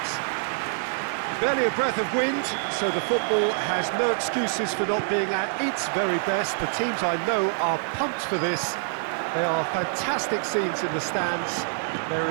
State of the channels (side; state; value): left; silent; digital silence